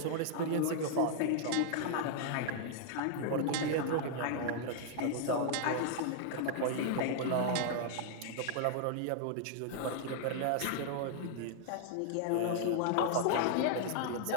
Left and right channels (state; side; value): different; both; correlation -0.01